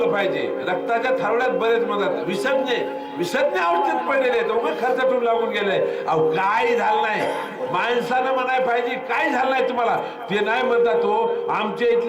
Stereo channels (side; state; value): both; identical; correlation 1.00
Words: पाहिजे. रक्ताच्या थारोळ्यात बरेच म्हणतात विसज्ञ अवस्थेत पडलेले आहेत. उगाच खर्च ठेवून लागून गेले. अहो काय झालं नाही, माणसानं म्हणाय पाहिजे काय झालं नाही तुम्हाला. ते नाही म्हणतात हो आमच्या